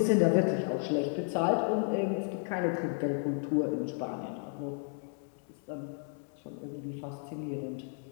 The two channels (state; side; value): silent; right; 56 dB below the other